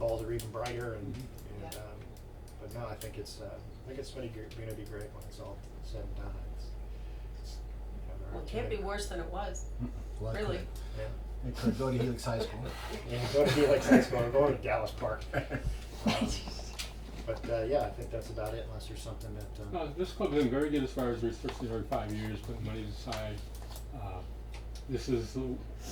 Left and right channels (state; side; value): identical; both; correlation 1.00